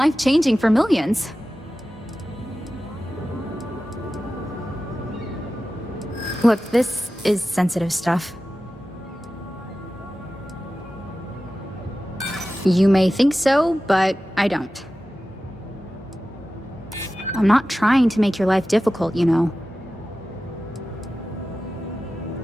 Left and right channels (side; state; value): both; normal; correlation 0.94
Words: for millions. Look, this is sensitive stuff. You may think so, but I don't. I'm not trying to make your life difficult, you know.